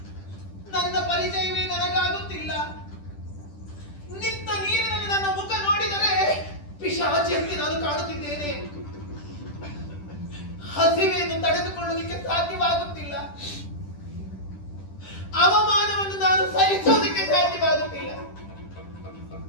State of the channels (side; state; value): right; late; 10 ms